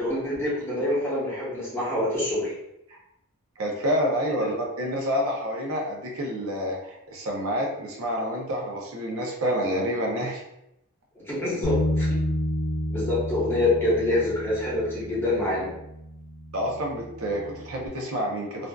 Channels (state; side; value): normal; both; correlation 0.31